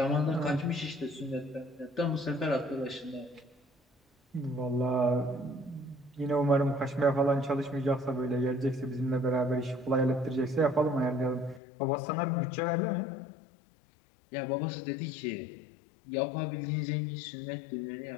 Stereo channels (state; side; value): drops out; right; at 11.6 s